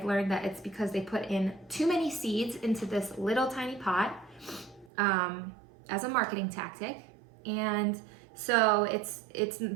learned that it's because they put in too many seeds into this little tiny pot as a marketing tactic. And so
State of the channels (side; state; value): left; drops out; at 4.9 s